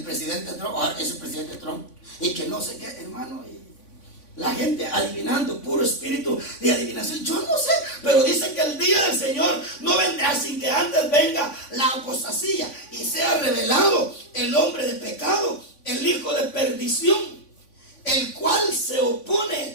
presidente Trump, ahora es el presidente Trump. Y que no sé qué, hermano. La gente adivinando, puro espíritu de adivinación. Yo no sé, pero dice que el día del Señor no vendrá sin que antes venga la apostasía y sea revelado el hombre de pecado, el hijo de perdición, el cual se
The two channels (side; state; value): right; late; 3.5 ms